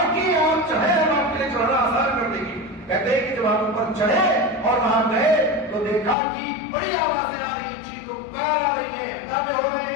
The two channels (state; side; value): drops out; right; at 6.2 s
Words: کہ آپ چڑھے، ہم آپ کے لیے چڑھنا آسان کر دیں گے۔ کہتے ہیں کہ جب آپ اوپر چڑھے اور وہاں گئے تو دیکھا کہ بڑی آوازیں آ رہی ہیں، چیخ و پکار آ رہی ہے، ہنگامے ہو رہے